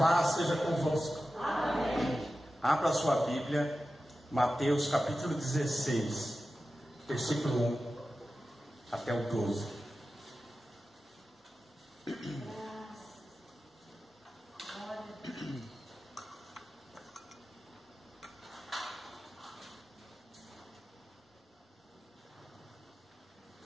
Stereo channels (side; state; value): both; normal; correlation 0.94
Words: seja convosco. Amém. Abra sua Bíblia, Mateus capítulo 16, versículo 1 até o 12.